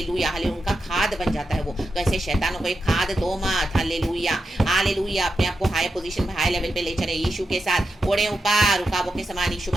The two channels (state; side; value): normal; both; correlation 0.88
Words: हालेलुया, उनका खाद बन जाता है वो। तो ऐसे शैतानों को एक खाद दो मत हालेलुया हालेलुया, अपने आप को हाई पोजीशन में, हाई लेवल पे ले चले, यीशु के साथ उड़े ऊपर, रुकावों के समान, यीशु